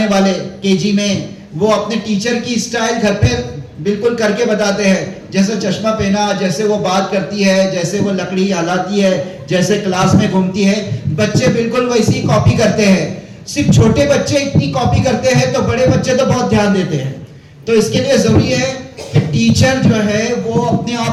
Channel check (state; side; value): identical; both; correlation 1.00